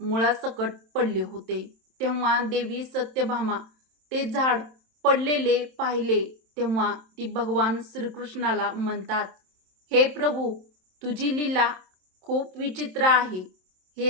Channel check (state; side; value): late; left; 27 ms